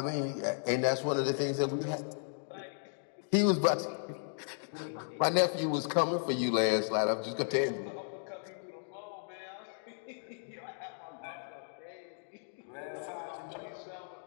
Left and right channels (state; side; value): silent; right; digital silence